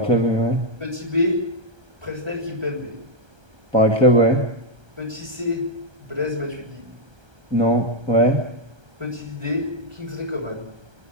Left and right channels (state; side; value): late; left; 1.3 ms